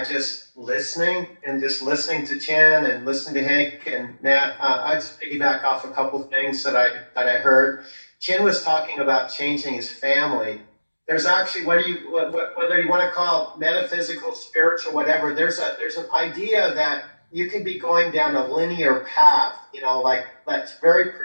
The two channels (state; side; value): inverted; both; correlation -1.00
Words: just listening to Chen and listening to Hank and Nat. I just piggyback off a couple of things that I heard. Chen was talking about changing his family. There's actually, whether you want to call it metaphysical, spiritual, whatever, there's an idea that you can be going down a linear path, like that's very